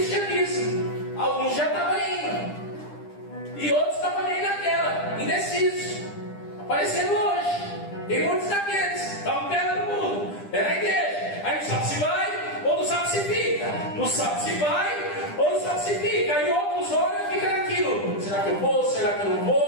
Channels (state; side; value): late; right; 10 ms